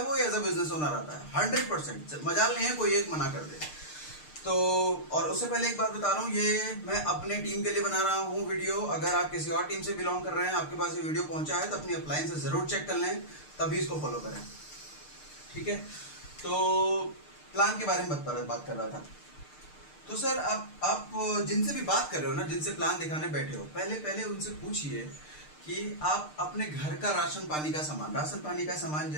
वो, एज ए बिजनेस ओनर आता है। 100% मजाल नहीं है कोई एक मना कर दे तो। और उससे पहले एक बात बता रहा हूँ, ये मैं अपने टीम के लिए बना रहा हूँ वीडियो। अगर आप किसी और टीम से बिलोंग कर रहे हैं, आपके पास ये वीडियो पहुंचा है, तो अपनी अपलाइन से जरूर चेक कर लें, तभी इसको फॉलो करें। ठीक है, तो प्लान के बारे में बात कर रहा था। तो सर आप जिनसे भी बात कर रहे हो ना, जिनसे प्लान दिखाने बैठे हो, पहले उनसे पूछिए कि आप अपने घर का राशन पानी का सामान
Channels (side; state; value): right; late; 6.6 ms